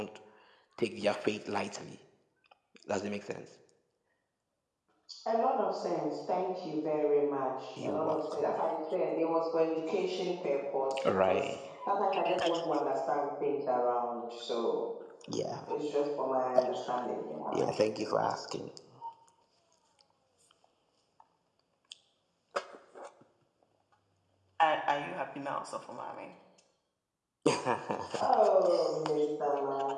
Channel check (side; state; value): both; identical; correlation 1.00